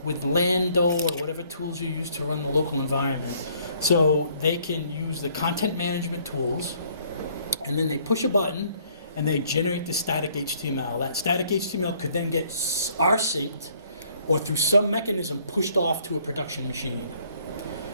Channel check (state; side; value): inverted; both; correlation -0.63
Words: with Lando or whatever tools you use to run the local environment, so they can use the content management tools, and then they push a button and they generate the static HTML. That static HTML could then get rsynced or through some mechanism pushed off to a production machine.